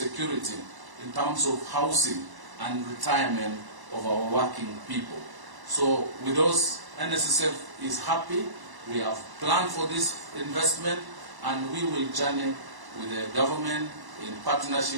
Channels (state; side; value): late; left; 1.0 ms